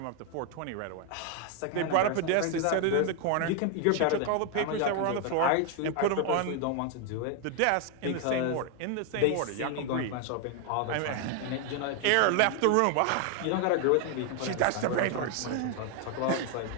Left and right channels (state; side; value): different; both; correlation 0.01